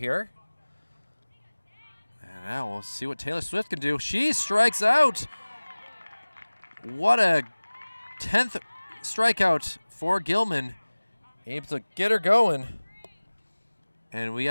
And now we'll see what Taylor Swift can do. She strikes out. What a 10th strikeout for Gilman. Able to get her going. And we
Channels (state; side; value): inverted; both; correlation -1.00